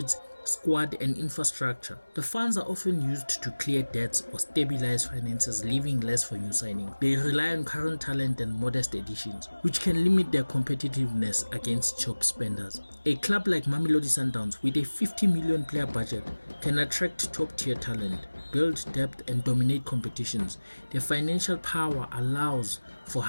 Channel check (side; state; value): both; inverted; correlation -1.00